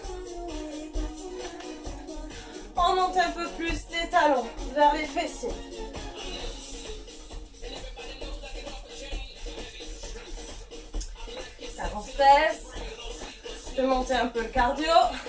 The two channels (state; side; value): identical; both; correlation 1.00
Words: On monte un peu plus les talons vers les fessiers. Talons fesses. Je peux monter un peu le cardio.